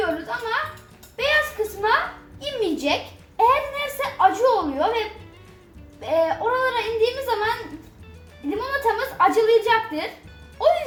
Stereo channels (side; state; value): both; identical; correlation 1.00